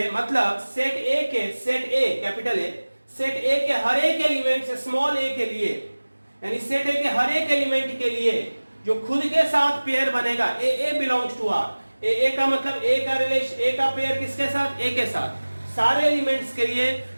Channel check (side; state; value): both; inverted; correlation -1.00